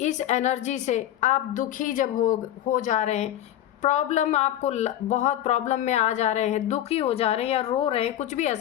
एनर्जी से आप दुखी जब हो जा रहे हैं, प्रॉब्लम आपको बहुत प्रॉब्लम में आ जा रहे हैं, दुखी हो जा रहे हैं या रो रहे हैं, कुछ भी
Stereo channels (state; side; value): quieter; right; 12.2 dB